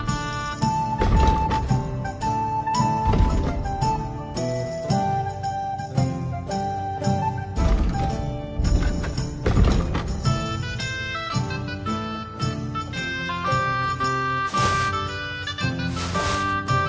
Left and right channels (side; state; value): both; identical; correlation 1.00